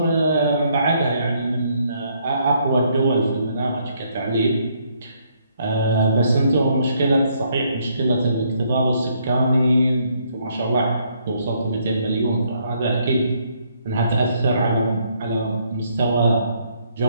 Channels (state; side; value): inverted; both; correlation -0.71